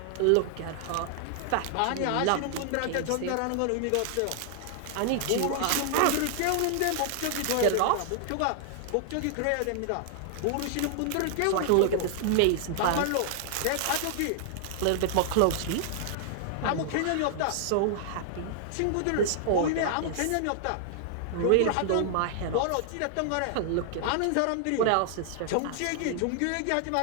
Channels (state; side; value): different; both; correlation 0.00